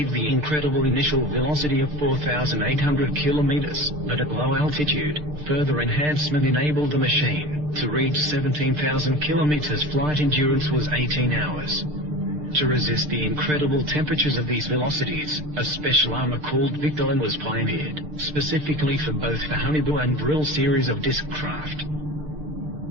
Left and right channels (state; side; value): late; left; 6.7 ms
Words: the incredible initial velocity of 4,800 kilometers, but at low altitude, further enhancement enabled the machine to reach 17,000 kilometers. Flight endurance was 18 hours. To resist the incredible temperatures of these velocities, a special armor called Victolan was pioneered, specifically for both the Honeyboo and Vril series of disc craft.